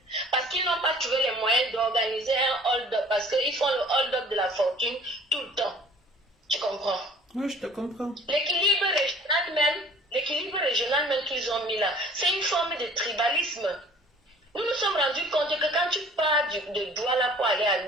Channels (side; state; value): both; normal; correlation 0.51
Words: Parce qu'ils n'ont pas trouvé les moyens d'organiser un hold-up, parce qu'ils font le hold-up de la fortune tout le temps. Tu comprends? Oui, je te comprends. L'équilibre régional même qu'ils ont mis là, c'est une forme de tribalisme. Nous nous sommes rendus compte que quand tu pars de Douala pour aller à